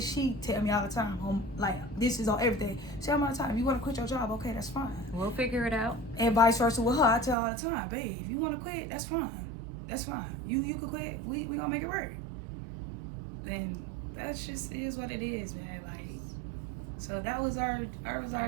she tell me all the time, like this is on everything. She tell me all the time, if you want to quit your job, okay, that's fine. We'll figure it out. And vice versa with her, I tell her all the time, babe, if you want to quit, that's fine. That's fine. You could quit. We gonna make it work. And that's just is what it is, man. Like, so that was our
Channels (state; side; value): drops out; left; at 7.4 s